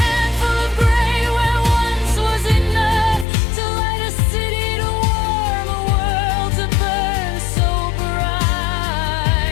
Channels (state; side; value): drops out; right; at 3.2 s